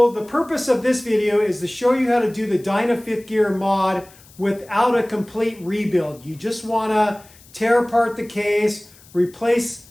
the purpose of this video is to show you how to do the Dyna fifth gear mod without a complete rebuild. You just want to tear apart the case, replace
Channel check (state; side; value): noise; left; hiss, 25 dB below the sound